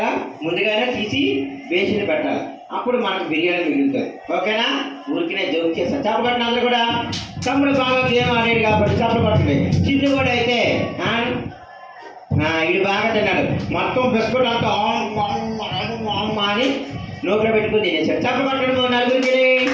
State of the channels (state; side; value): identical; both; correlation 1.00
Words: ముందుగానే తీసి వేసిని పెట్టాలి. అప్పుడు మనకు బిర్యానీ మిగులుతుంది. ఓకేనా? ఊరికినే జోక్ చేస్తాను. చప్పకొట్టిన అందరూ కూడా. తమ్ముడు బాగా గేమ్ ఆడాడు కాబట్టి చప్పకొట్టండి. చిన్ను కూడా అయితే ఇది బాగా తిన్నాడు. మొత్తం బిస్కెట్ అంతా అని నోట్లో పెట్టుకుని తినేసాడు. చప్పకొట్టడం నలుగురికి.